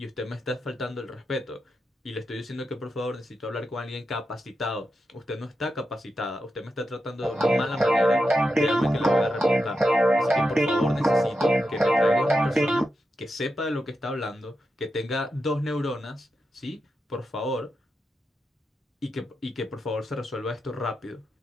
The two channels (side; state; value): both; normal; correlation 0.88